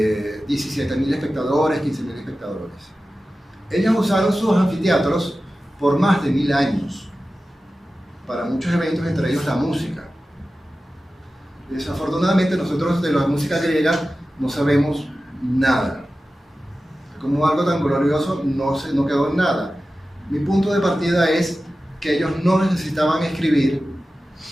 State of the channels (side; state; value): both; normal; correlation 0.95